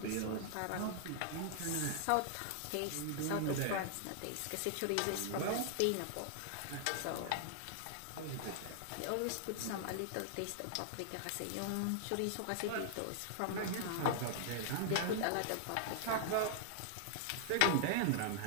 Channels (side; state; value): both; different; correlation -0.01